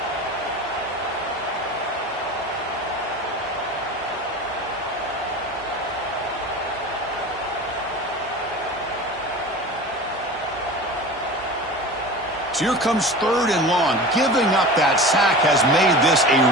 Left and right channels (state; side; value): normal; both; correlation 0.34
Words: So here comes 3rd and long. Giving up that sack has made this a